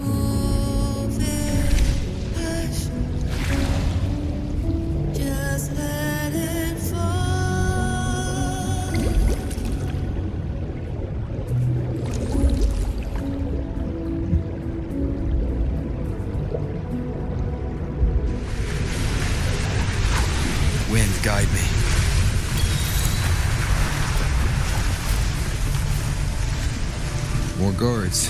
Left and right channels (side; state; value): both; identical; correlation 1.00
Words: Wind, guide me. More